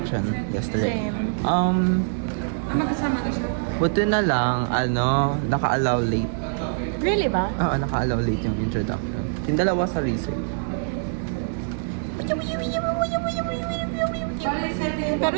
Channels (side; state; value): left; silent; 62 dB below the other